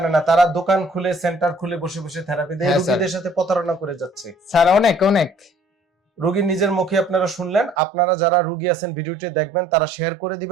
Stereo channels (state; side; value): drops out; left; at 7.8 s